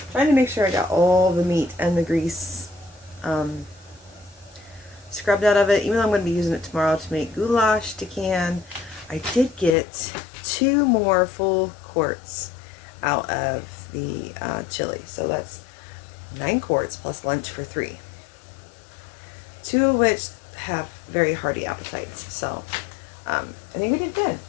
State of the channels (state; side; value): drops out; right; at 9.8 s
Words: Trying to make sure I got all the meat and the grease scrubbed out of it, even though I'm going to be using it tomorrow to make goulash to can. I did get 2 more full quarts out of the chili, so that's 9 quarts plus lunch for 3. 2 of which have very hearty appetites, so I think we did good.